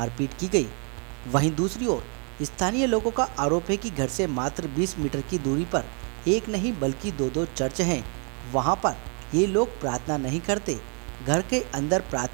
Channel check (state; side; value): quieter; left; 39.0 dB